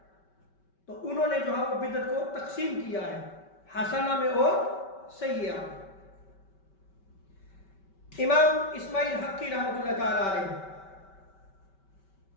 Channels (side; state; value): right; late; 5.2 ms